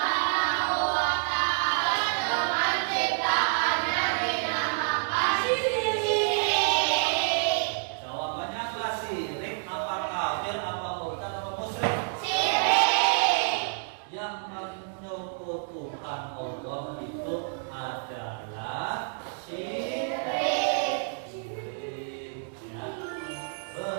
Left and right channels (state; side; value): silent; left; digital silence